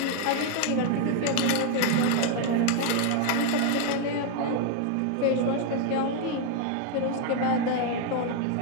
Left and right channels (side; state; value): both; different; correlation 0.01